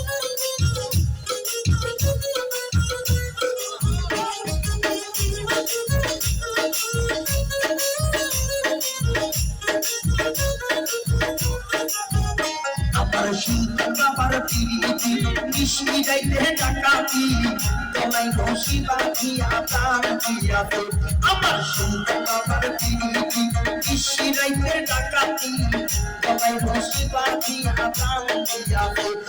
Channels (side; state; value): both; identical; correlation 1.00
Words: আমার শীতল আমার পিরিতি মিষ্টি গাইতে ডাকাতি গলায় রশি বাঁধিয়া প্রাণ দিয়াছে আমার শীতল আমার পিরিতি মিষ্টি গাইতে ডাকাতি গলায় রশি বাঁধিয়া প্রাণ দিয়াছে